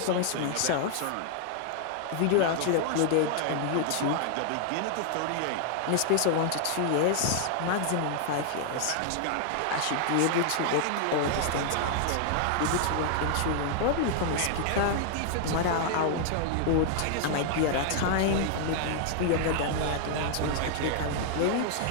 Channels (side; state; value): both; different; correlation -0.01